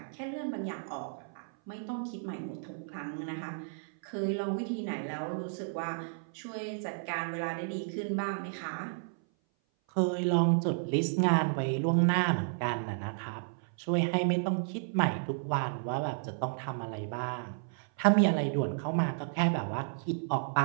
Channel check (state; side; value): silent; left; 56 dB below the other